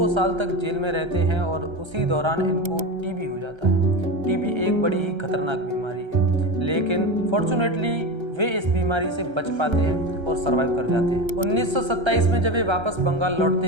साल तक जेल में रहते हैं और उसी दौरान इनको टीबी हो जाता है। टीबी एक बड़ी ही खतरनाक बीमारी है, लेकिन फॉर्चुनेटली वे इस बीमारी से बच पाते हैं और सरवाइव कर जाते हैं। 1927 में जब वे वापस बंगाल लौटते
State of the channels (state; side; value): late; left; 1.3 ms